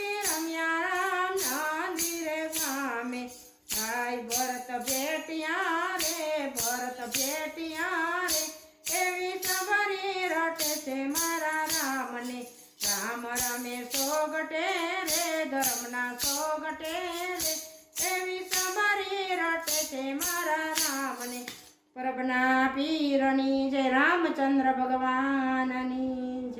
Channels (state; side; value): identical; both; correlation 1.00